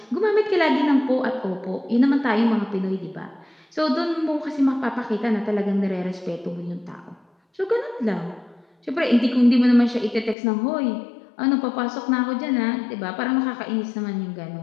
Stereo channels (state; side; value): drops out; right; at 10.4 s